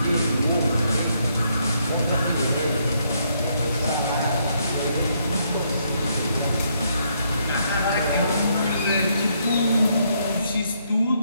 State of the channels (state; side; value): inverted; both; correlation -0.74